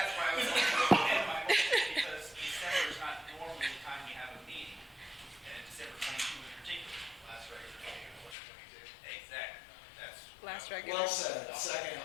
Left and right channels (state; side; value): drops out; right; at 8.3 s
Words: That's why I was going to amend my motion, because December is not normally the time we have a meeting, and December 22 in particular. Last regular meeting of 2022. Exactly, that's. Last regular. well said? Second.